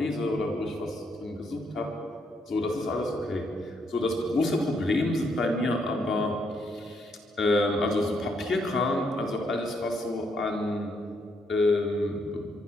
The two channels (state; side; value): normal; both; correlation 0.75